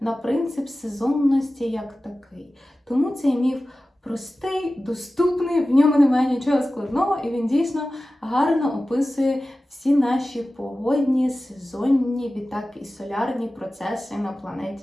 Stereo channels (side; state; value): both; normal; correlation 0.95